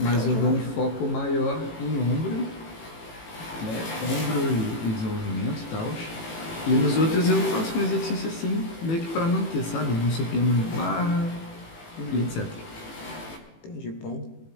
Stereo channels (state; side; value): late; right; 18 ms